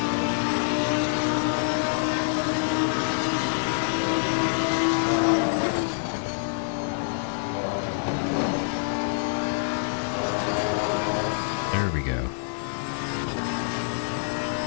There we go.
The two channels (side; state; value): right; silent; digital silence